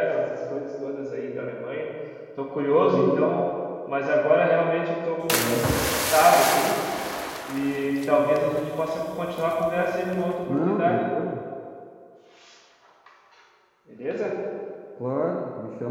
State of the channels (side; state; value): both; identical; correlation 1.00